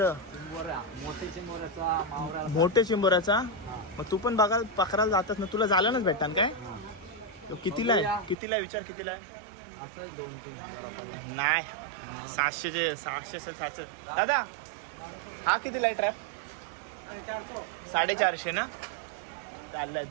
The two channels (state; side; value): drops out; left; at 8.3 s